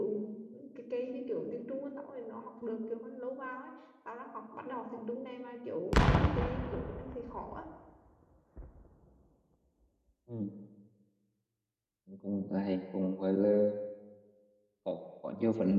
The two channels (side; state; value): both; identical; correlation 1.00